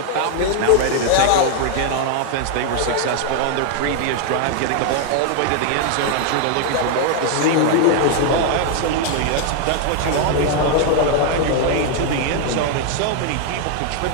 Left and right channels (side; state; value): both; different; correlation 0.00